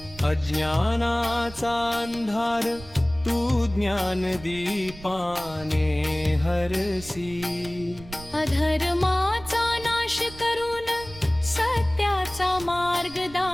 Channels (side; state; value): right; noise; rumble, 17 dB below the sound